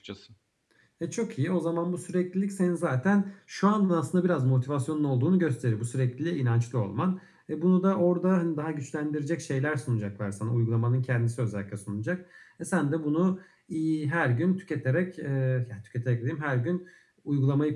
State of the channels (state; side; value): identical; both; correlation 1.00